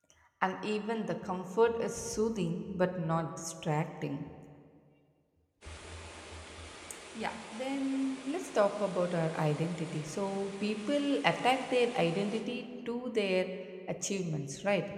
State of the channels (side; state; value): both; identical; correlation 1.00